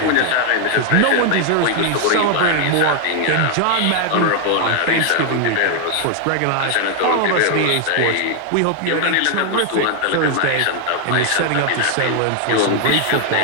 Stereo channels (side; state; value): both; different; correlation 0.00